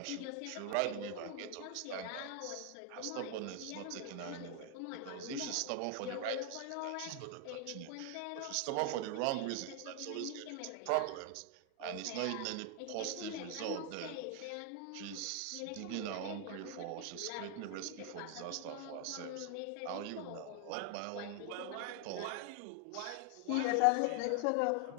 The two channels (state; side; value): different; both; correlation 0.00